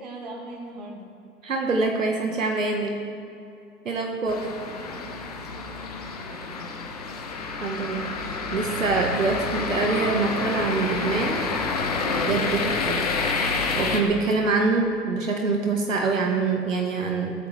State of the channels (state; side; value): normal; both; correlation 0.31